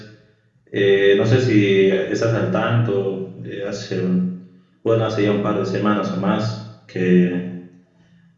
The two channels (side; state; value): both; identical; correlation 1.00